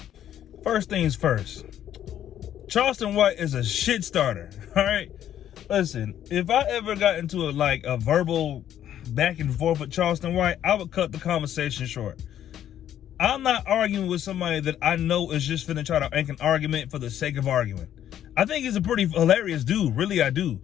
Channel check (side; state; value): right; quieter; 10.9 dB